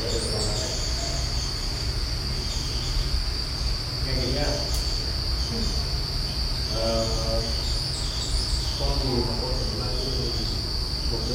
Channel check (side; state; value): both; identical; correlation 1.00